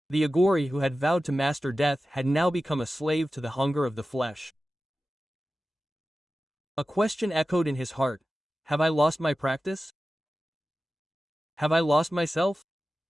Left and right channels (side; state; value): both; normal; correlation 0.94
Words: The aghori who had vowed to master death had now become a slave to the hunger of the flesh. A question echoed in his heart. Have I lost my practice? Have I lost myself?